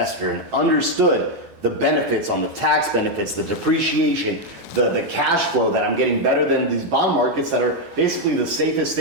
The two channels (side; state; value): left; late; 11 ms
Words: and understood the benefits on the tax benefits, the depreciation, the cash flow that I'm getting better than these bond markets that are basically the safest